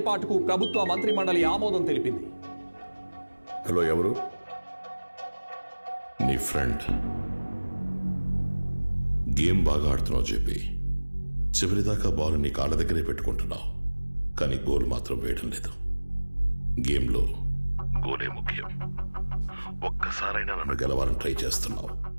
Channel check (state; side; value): inverted; both; correlation -1.00